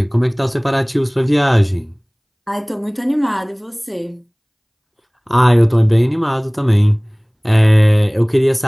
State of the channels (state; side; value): identical; both; correlation 1.00